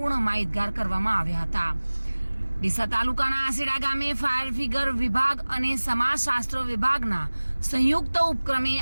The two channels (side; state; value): both; inverted; correlation -1.00